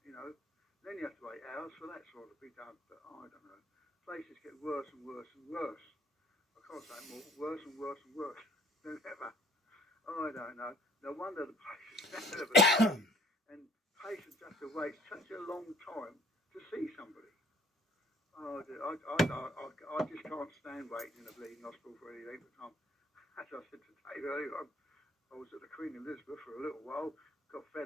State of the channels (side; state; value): both; normal; correlation 0.57